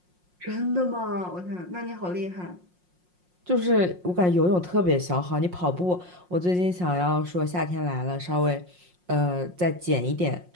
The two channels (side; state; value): left; late; 5.6 ms